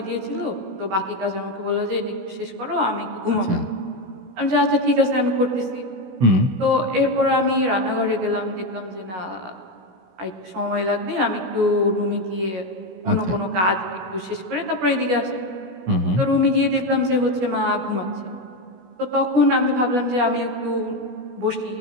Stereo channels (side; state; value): left; late; 16 ms